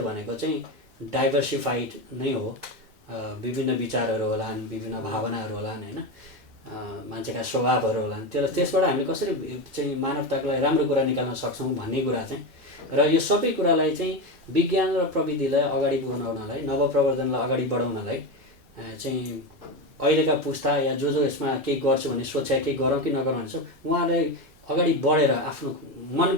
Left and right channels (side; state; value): both; normal; correlation 0.16